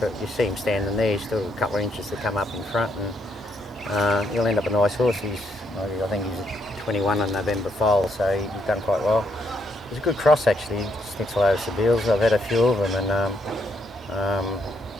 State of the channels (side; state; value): both; normal; correlation 0.75